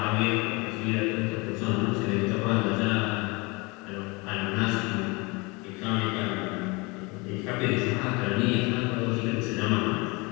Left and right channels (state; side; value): quieter; right; 27.0 dB